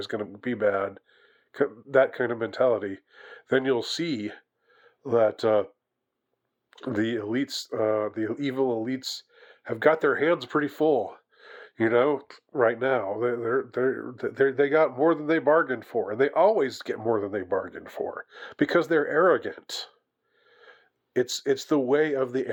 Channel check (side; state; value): both; identical; correlation 1.00